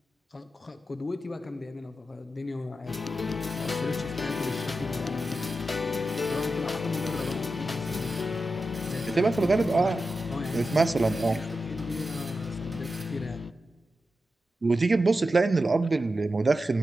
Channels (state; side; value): normal; both; correlation 0.90